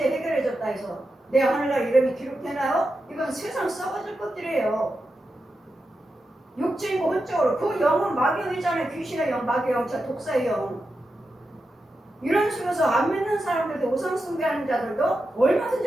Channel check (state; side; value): normal; both; correlation 0.89